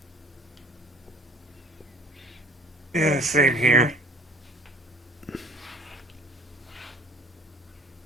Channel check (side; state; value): both; normal; correlation 0.50